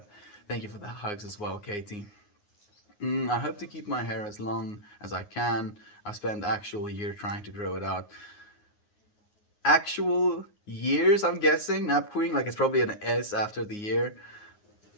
Thank you for the hugs as well, Katie. I hope to keep my hair as long as I can. I spent actual year trying to grow it out. Actual years, I'm guessing, Nap Queen, like it's probably an S after the year.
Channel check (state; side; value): late; right; 9.6 ms